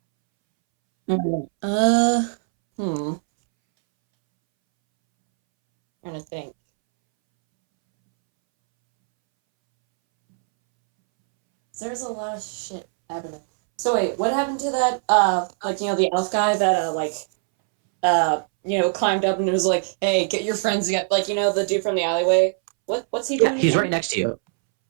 Trying to think. There's a lot of shit happening. So wait, what happened to that? The elf guy that climbed up and was like, "Hey, get your friends together." The dude from the alleyway. What's he doing? Yeah, he's again? right next to you.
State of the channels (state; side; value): silent; left; 64 dB below the other